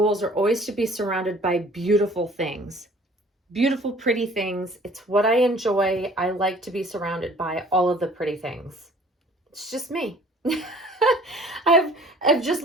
are always to be surrounded by beautiful things. Beautiful, pretty things. It's what I enjoy. I like to be surrounded by all of the pretty things. It's just me. I've just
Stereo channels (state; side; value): normal; both; correlation 0.52